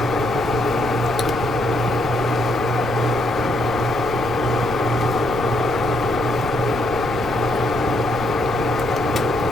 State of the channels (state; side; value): noise; left; rumble, 12 dB below the sound